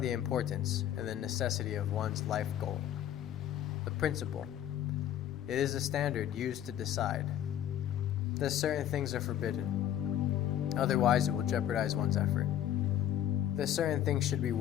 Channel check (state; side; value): quieter; right; 11.1 dB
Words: importance and the necessity of one's life goal. The principle. It is a standard used to decide that certain things are forbidden, otherwise it will jeopardize one's effort. That certain things should be